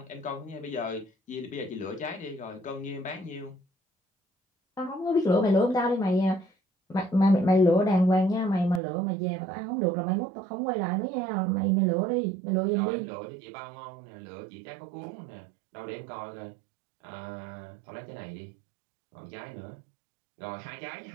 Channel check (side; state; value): left; drops out; at 8.8 s